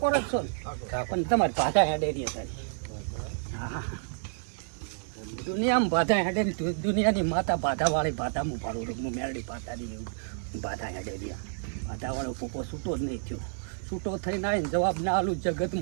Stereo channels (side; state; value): left; silent; digital silence